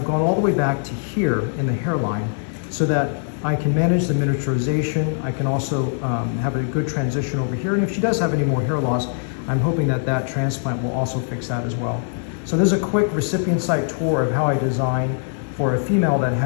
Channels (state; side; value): silent; right; digital silence